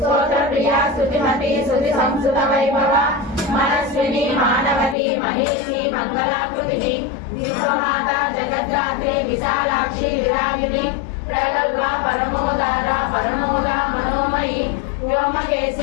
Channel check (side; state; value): right; drops out; at 5.0 s